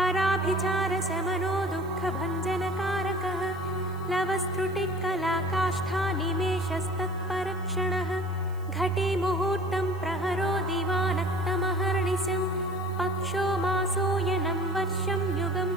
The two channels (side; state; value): right; noise; hiss, 28 dB below the sound